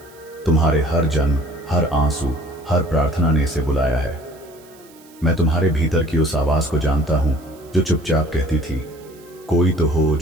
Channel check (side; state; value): right; noise; hiss, 26 dB below the sound